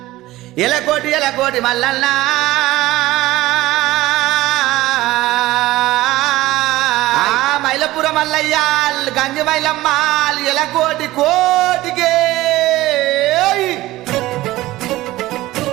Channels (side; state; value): left; quieter; 17.3 dB